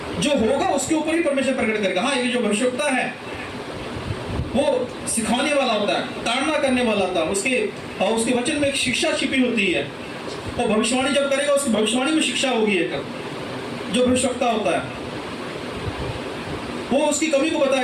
जो होगा उसके ऊपर ही परमेश्वर प्रकट करेगा। हाँ, ये जो भविष्यवक्ता है वो सिखाने वाला होता है, ताड़ना करने वाला होता है, उसके वचन में एक शिक्षा छिपी होती है। और भविष्यवाणी जब करेगा उसकी भविष्यवाणी में शिक्षा होगी। एक जो भविष्यवक्ता होता है वो उसकी कमी को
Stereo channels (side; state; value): both; identical; correlation 1.00